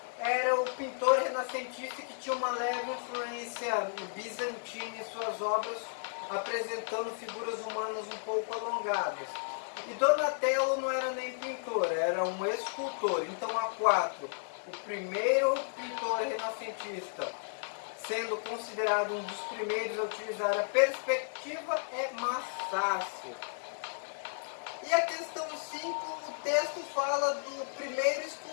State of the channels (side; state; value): right; silent; digital silence